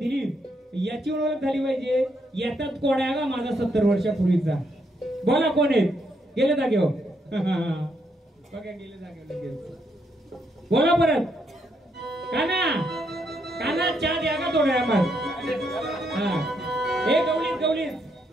याची ओळख झाली पाहिजे येतात कोण आहे का माझा 70 वर्षापूर्वीचा बोला कोण आहेत गेले जागेवर बघा गेले जागेवर बोला परत काना काना चहा द्या का थोड्या मग हे गवळीत गवळीत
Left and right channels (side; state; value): both; normal; correlation 0.76